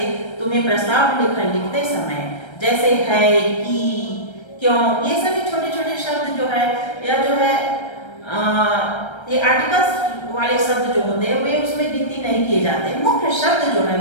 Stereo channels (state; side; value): late; right; 1.3 ms